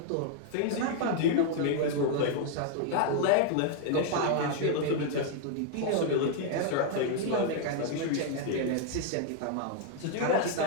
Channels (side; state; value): both; different; correlation 0.00